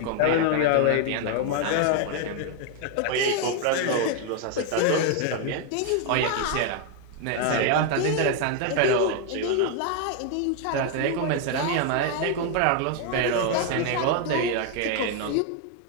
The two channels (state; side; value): different; both; correlation 0.00